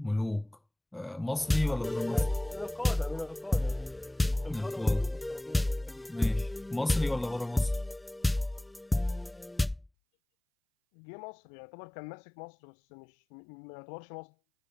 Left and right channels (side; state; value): right; drops out; at 9.9 s